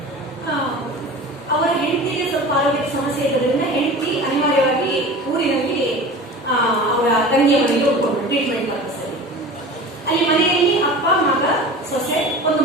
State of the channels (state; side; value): normal; both; correlation 0.36